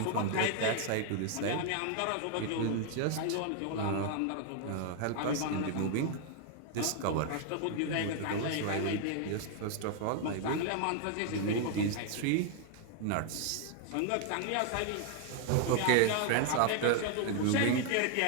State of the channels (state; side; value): different; both; correlation 0.00